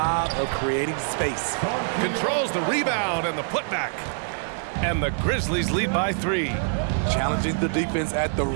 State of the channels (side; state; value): left; silent; digital silence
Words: of creating space. Controls the rebound and the putback. And the Grizzlies lead by 3. Challenging the defense at the